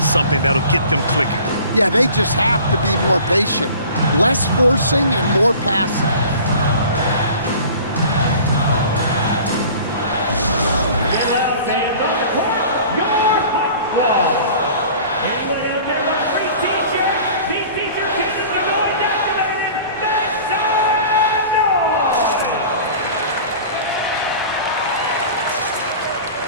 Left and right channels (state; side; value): inverted; both; correlation -0.43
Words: something that'll get them clicking. Yeah, they just have to be more patient. Less forcing and more passing.